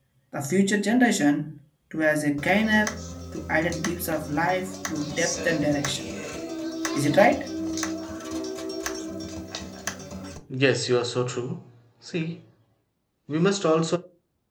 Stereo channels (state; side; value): identical; both; correlation 1.00